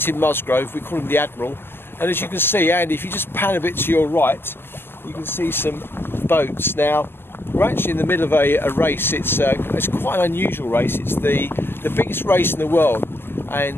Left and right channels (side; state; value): right; late; 0.11 ms